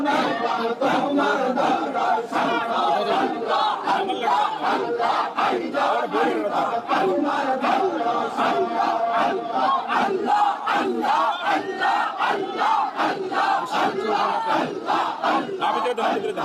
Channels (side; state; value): both; identical; correlation 1.00